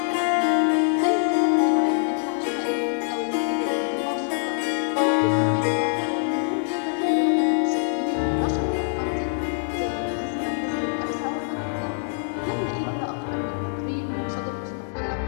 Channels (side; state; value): right; silent; digital silence